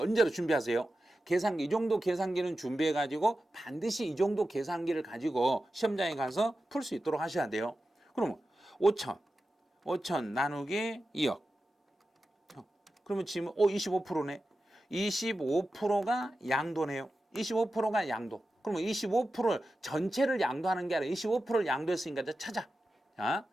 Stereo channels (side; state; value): both; normal; correlation 0.92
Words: 준비하세요? 계산기, 이 정도 계산기는 준비해가지고 반드시 이 정도 계산기를 가지고 시험장에 가서 풀 수 있도록 하셔야 돼요. 그러면 5천 나누기 2억. 그러면 지금 25%네. 25%가 양도네요. 25%가 양도. 그러면 25%를 전체를 양도하는 게 아니라 25%를 양도했으니까 이제 찾아. 자,